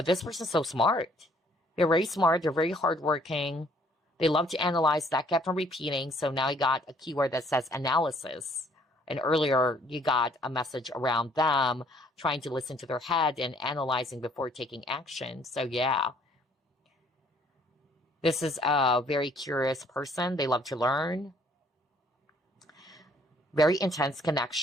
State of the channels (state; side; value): normal; both; correlation 0.62